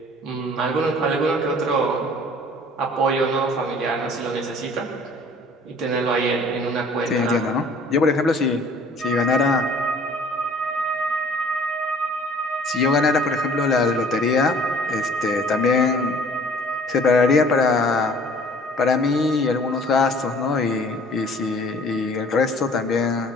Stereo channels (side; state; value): both; normal; correlation 0.52